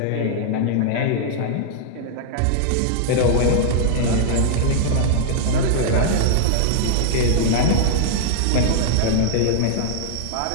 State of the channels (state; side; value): different; both; correlation -0.01